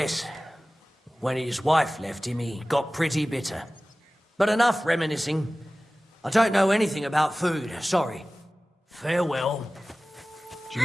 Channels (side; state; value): both; normal; correlation 0.97